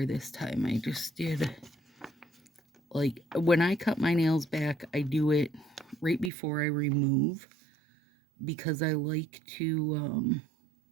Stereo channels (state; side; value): drops out; left; at 6.3 s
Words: this time. I just did, like, when I cut my nails back, I do it right before I remove. Because I like to